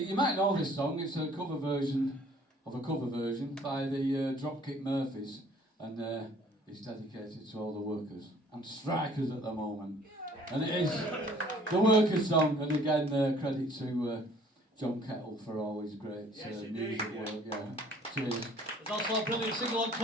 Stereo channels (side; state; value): both; normal; correlation 0.56